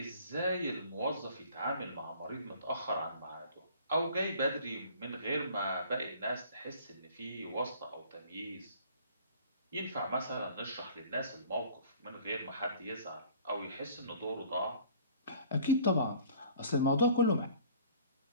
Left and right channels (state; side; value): inverted; both; correlation -0.50